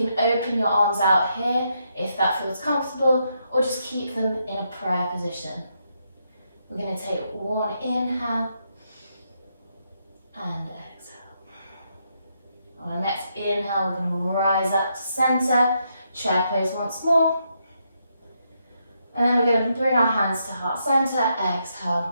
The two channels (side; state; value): both; inverted; correlation -0.79